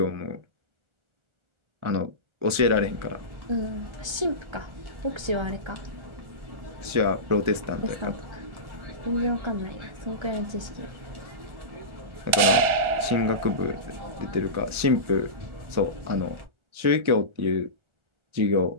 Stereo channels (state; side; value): late; left; 1.4 ms